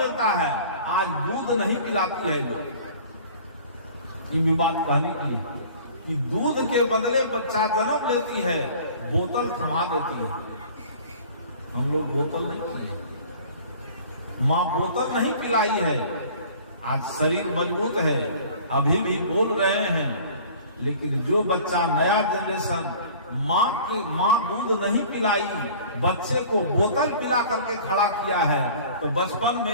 है, आज दूध नहीं पिलाती है लोग, ये बात कहने की है कि दूध के बदले बच्चा जन्म लेती है, बोतल थमा देती है। हम लोग बोतल नहीं पिए, माँ बोतल नहीं पिलाई है। आज शरीर मजबूत है, अभी भी बोल रहे हैं, लेकिन जो बच्चा नया जनरेशन माँ दूध नहीं पिलाई, बच्चे को बोतल पिला करके खड़ा किया है, तो बचपन में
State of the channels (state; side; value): inverted; both; correlation -0.47